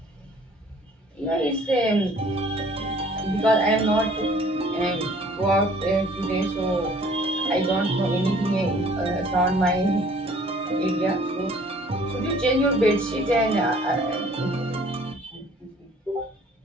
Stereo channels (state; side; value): normal; both; correlation 0.55